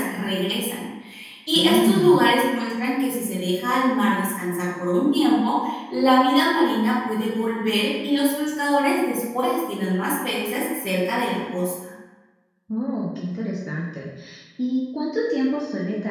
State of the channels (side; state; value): both; identical; correlation 1.00